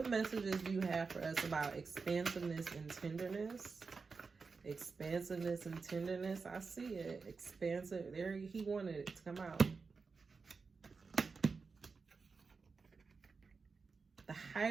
messages do you have for us about expansiveness and tenderness? Expansiveness and tenderness. I see it. Expansive. There, he wanted it to come out. The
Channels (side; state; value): left; quieter; 4.7 dB